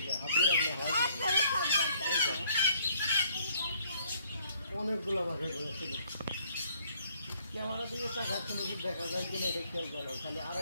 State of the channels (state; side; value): inverted; both; correlation -0.64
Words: হাত দিয়ে রাখলে হয় অনেকগুলো বাসা করেছিল ক্যামেরা দিয়ে তাকাচ্ছে নাকি দেখা যায় কিনা এটা খেয়াল করো খালি